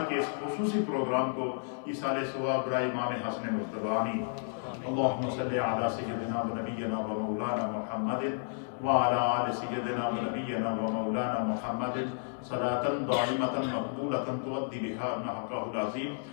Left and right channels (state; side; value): silent; right; digital silence